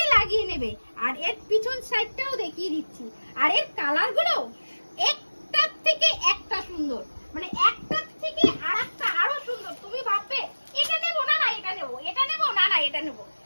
লাগিয়ে নেবে। আর এর পিছন সাইডটাও দেখিয়ে দিচ্ছি। আর এর কালারগুলো একটার থেকে একটা সুন্দর, মানে একটার থেকে আরেকটা আরো সুন্দর। তুমি ভাববে এটা নেবো না, না এটা নেবো, এটা নেবো না, না এটা নেবো।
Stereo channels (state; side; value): inverted; both; correlation -1.00